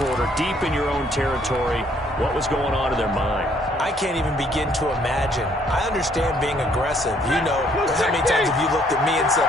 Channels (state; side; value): normal; both; correlation 0.65